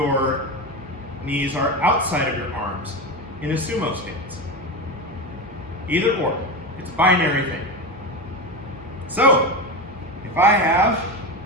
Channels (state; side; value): normal; both; correlation 0.20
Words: knees are outside of your arms in a sumo stance. Either or. It's a binary thing. So, if I have